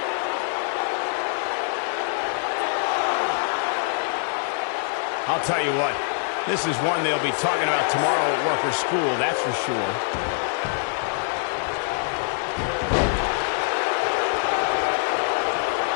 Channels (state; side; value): silent; right; digital silence